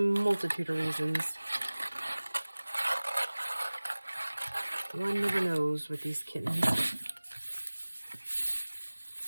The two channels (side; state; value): both; inverted; correlation -1.00